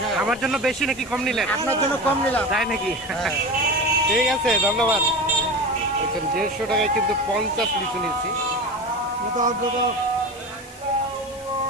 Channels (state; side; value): noise; left; hiss, 20 dB below the sound